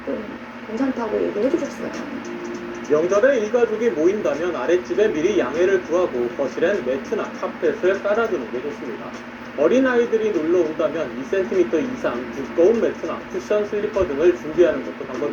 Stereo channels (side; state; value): both; identical; correlation 1.00